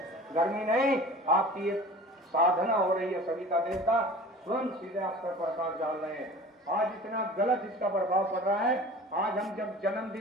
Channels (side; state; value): both; normal; correlation 0.41